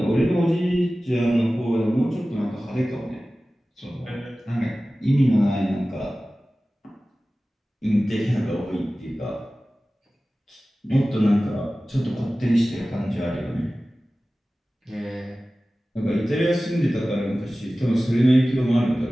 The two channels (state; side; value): normal; both; correlation 0.96